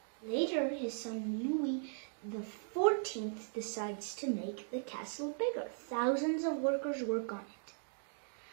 Later, his son Louis XIV decides to make the castle bigger. Thousands of workers work on it.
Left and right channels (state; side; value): silent; left; digital silence